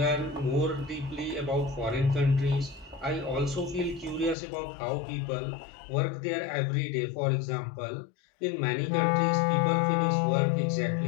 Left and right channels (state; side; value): drops out; right; at 4.4 s